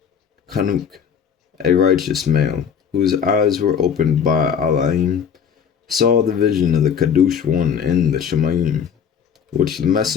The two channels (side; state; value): right; quieter; 7.5 dB